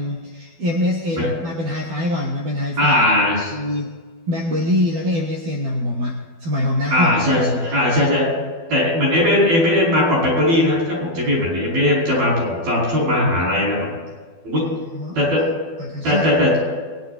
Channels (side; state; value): left; late; 12 ms